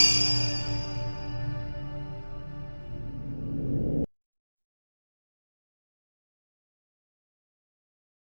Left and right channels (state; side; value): inverted; both; correlation -1.00